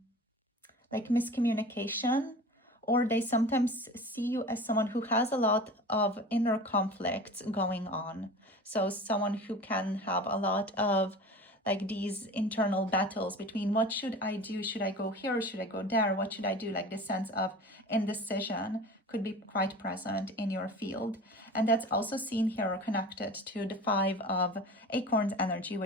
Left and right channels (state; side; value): normal; both; correlation 0.37